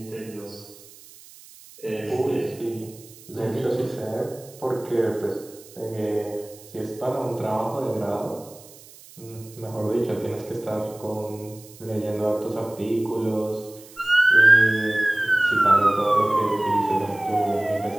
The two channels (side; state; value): right; noise; hiss, 21 dB below the sound